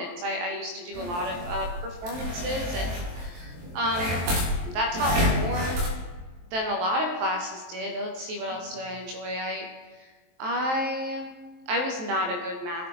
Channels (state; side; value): late; left; 23 ms